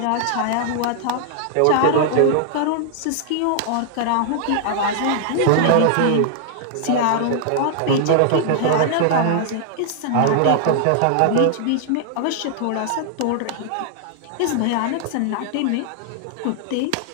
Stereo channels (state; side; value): different; both; correlation -0.01